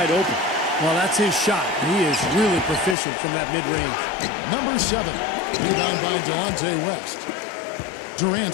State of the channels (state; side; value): drops out; right; at 3.0 s